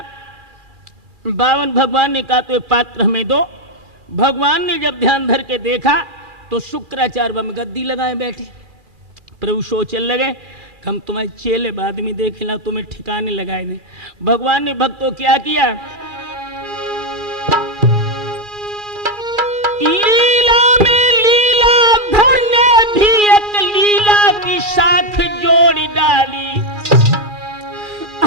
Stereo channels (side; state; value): left; late; 2.4 ms